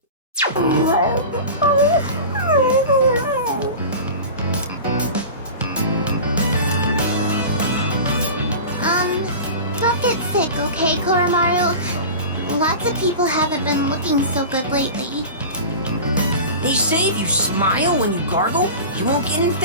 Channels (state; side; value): inverted; both; correlation -0.32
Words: Don't get sick, okay, Koromaru? Lots of people haven't been looking so good lately. They say if you smile when you gargle, you won't get